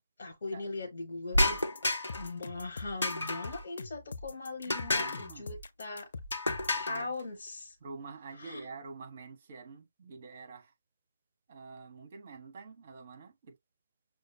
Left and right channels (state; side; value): inverted; both; correlation -0.83